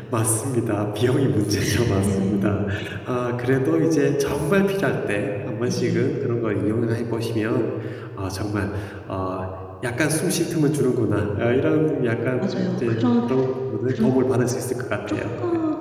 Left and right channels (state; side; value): identical; both; correlation 1.00